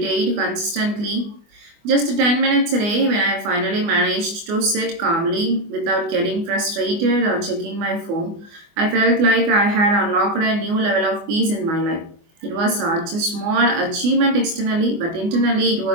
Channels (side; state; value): left; late; 24 ms